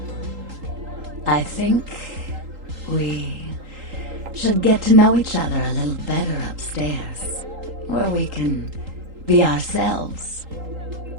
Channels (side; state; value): left; late; 3.8 ms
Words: I think we should get to know each other a little better upstairs, where we can be ourselves.